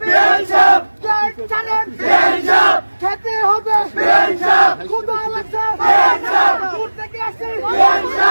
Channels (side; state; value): both; inverted; correlation -1.00